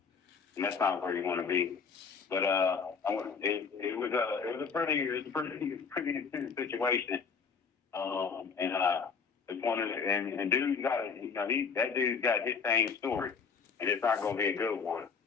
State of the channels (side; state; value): right; quieter; 5.7 dB